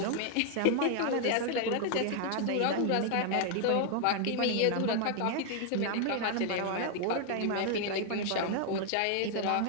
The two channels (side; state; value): both; different; correlation 0.00